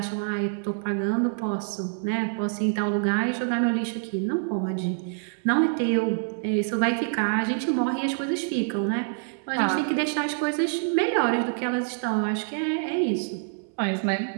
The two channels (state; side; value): silent; left; 61 dB below the other